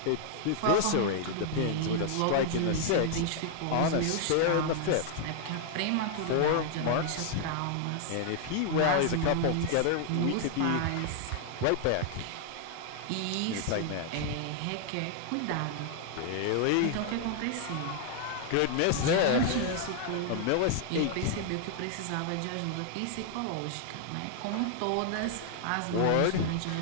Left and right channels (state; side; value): different; both; correlation 0.00